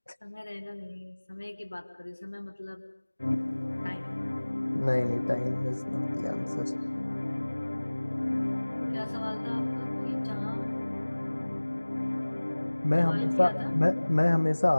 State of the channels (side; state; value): both; inverted; correlation -1.00